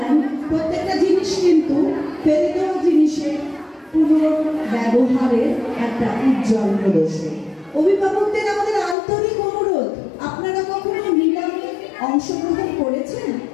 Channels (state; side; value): drops out; right; at 9.0 s